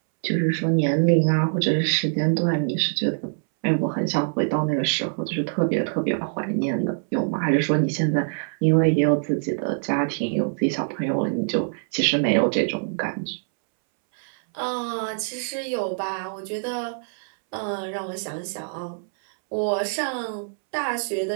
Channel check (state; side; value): silent; left; 62 dB below the other